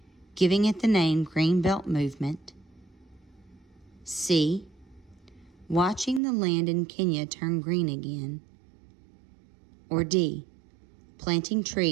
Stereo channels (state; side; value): drops out; left; at 6.2 s